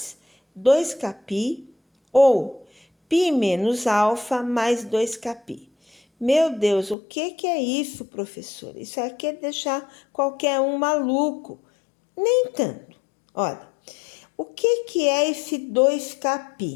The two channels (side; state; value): right; drops out; at 7.0 s